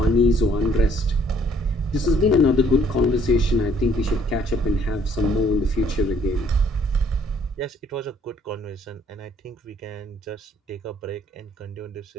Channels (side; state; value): both; normal; correlation 0.62